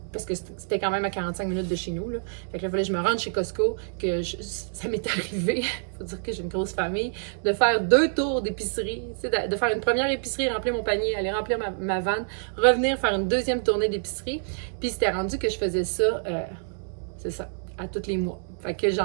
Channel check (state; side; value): silent; left; digital silence